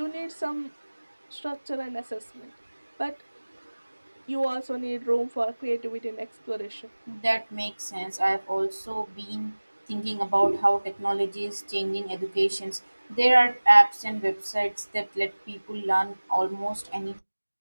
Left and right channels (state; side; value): inverted; both; correlation -1.00